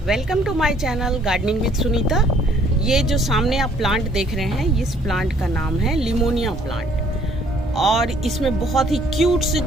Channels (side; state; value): both; normal; correlation 0.61